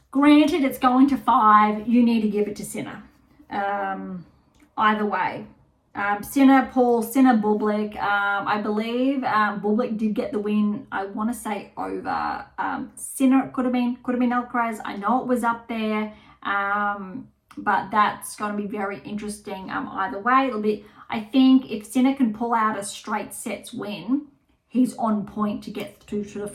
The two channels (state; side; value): identical; both; correlation 1.00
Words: Granted, it's going to 5. You need to give it to Sinner. Either way. Sinner, Paul, Sinner, Bublik. I believe Bublik did get the win. I want to say over Sinner. It could have been Alcaraz. I know it was up there. But that's going to be very interesting either way. It'll be, I think, if Sinner can pull out a straight sets win, he's on point to get to the